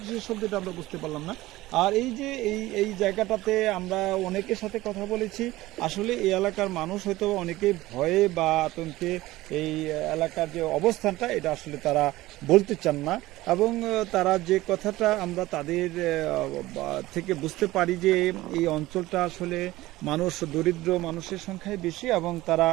শব্দ, এটা আমরা বুঝতে পারলাম না। আর এই যে এই জায়গাটাতে আমরা অনেকের সাথে কথা বলেছি, আসলে এই এলাকার মানুষ হয়তো অনেকেই ভয়ে বা আতঙ্কে এই এলাকার যে অবস্থানটা এটা আসলে তারা বলতে চান না। এবং তারা যে কথাটা আমরা তাদের থেকে বুঝতে পারি যে এই অঞ্চলটা আসলে দরিদ্র মানুষের সংখ্যাই বেশি এবং তারা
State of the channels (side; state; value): left; quieter; 17.6 dB